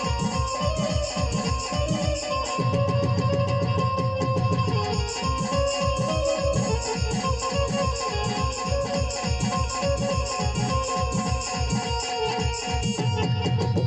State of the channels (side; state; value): both; identical; correlation 1.00